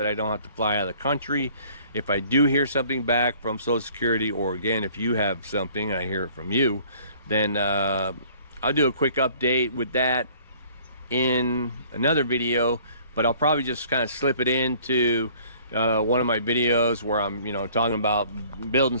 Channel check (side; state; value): both; inverted; correlation -0.55